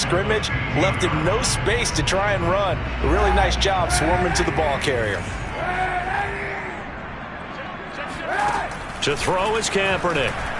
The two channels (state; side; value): identical; both; correlation 1.00